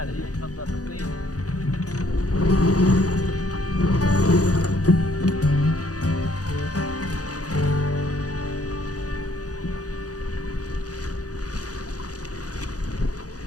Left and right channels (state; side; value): late; right; 0.67 ms